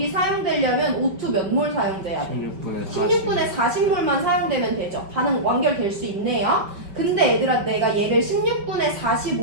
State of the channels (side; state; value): left; late; 5.2 ms